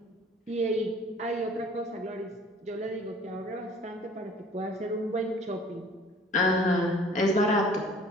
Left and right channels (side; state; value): both; normal; correlation 0.51